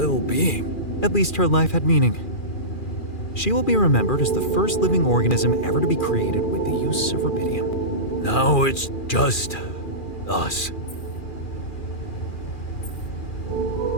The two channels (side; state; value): right; late; 2.4 ms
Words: being. At least her life had meaning. She will be remembered as the first living organism ever to be created with the use of rubidium. Now it's just us.